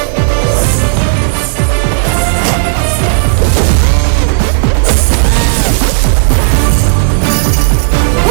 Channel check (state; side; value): silent; left; digital silence